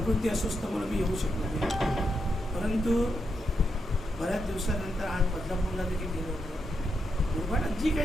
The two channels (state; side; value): normal; both; correlation 0.84